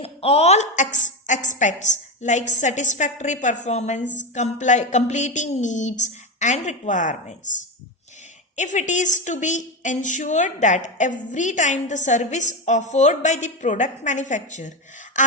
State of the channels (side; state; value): both; normal; correlation 0.15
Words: all aspects like satisfactory performance, completing needs and requirements. If it is to be ensured that every time the service offered by the product manufacturer